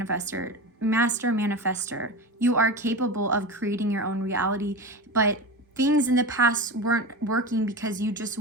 You are capable of creating your own reality, but things in the past weren't working because you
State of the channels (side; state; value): both; normal; correlation 0.25